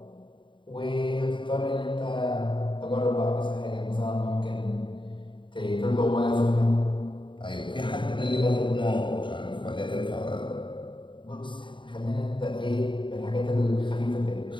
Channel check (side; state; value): right; late; 0.23 ms